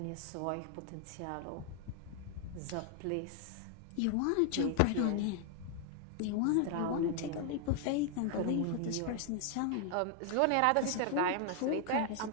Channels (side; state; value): both; different; correlation 0.00